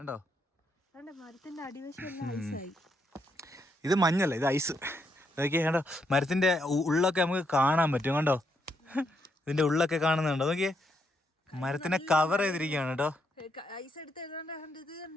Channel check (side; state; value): both; normal; correlation 0.78